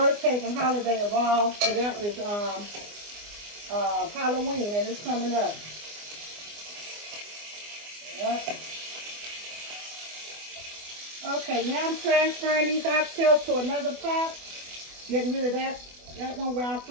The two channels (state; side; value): late; left; 24 ms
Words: pagan holiday of all for them is Halloween, and it's coming up. Yep. Okay, now I'm transferring these oxtails to another pot. Getting rid of that one where I